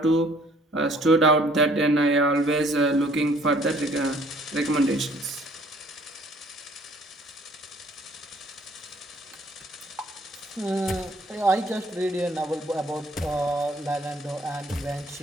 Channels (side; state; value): both; normal; correlation 0.59